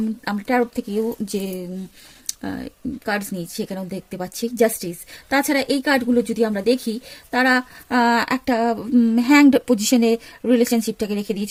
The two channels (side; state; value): both; identical; correlation 1.00